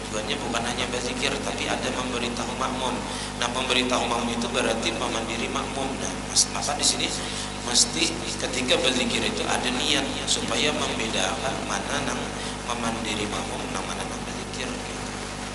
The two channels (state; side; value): identical; both; correlation 1.00